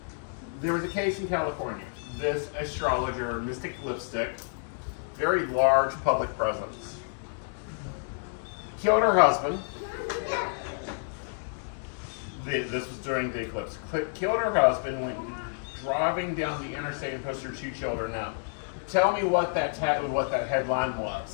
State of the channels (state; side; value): silent; right; digital silence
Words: There was a case in California. This astrologer, Mystic Lipstick, very large public presence, killed her husband. This was during the eclipse. Killed her husband, went driving down the interstate and pushed her 2 children out. Tell me what that headline